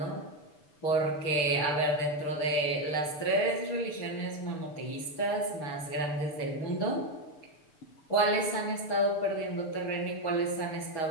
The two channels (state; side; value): late; right; 6.8 ms